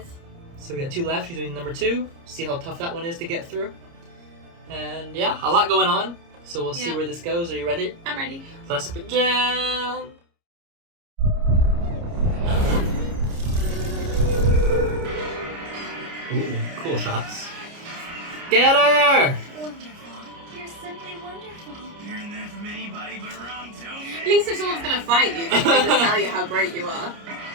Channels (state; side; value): late; left; 29 ms